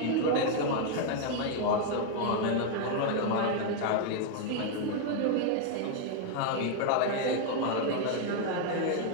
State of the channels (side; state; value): both; different; correlation 0.00